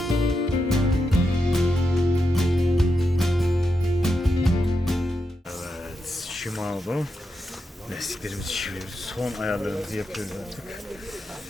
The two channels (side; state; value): both; normal; correlation 0.86